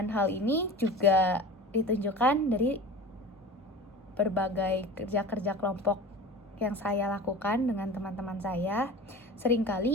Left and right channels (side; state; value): both; normal; correlation 0.35